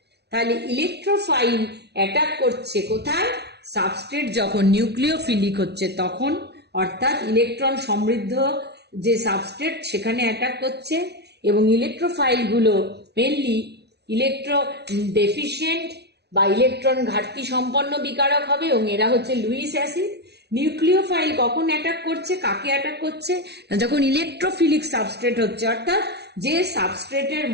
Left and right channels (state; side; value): late; left; 0.49 ms